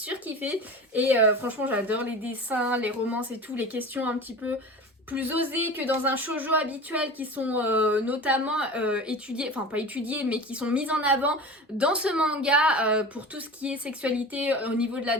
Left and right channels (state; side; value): normal; both; correlation 0.34